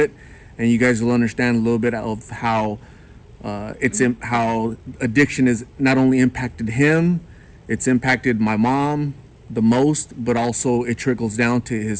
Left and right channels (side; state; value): both; identical; correlation 1.00